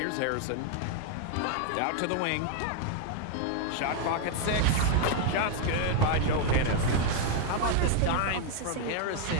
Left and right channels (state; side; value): different; both; correlation 0.00